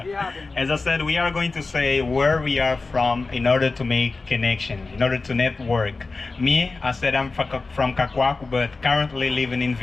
As I said, we are going to say where we are from in order to make connection, in order to network. Me, I said I'm from Cacoaco, but currently living in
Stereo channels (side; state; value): right; quieter; 3.8 dB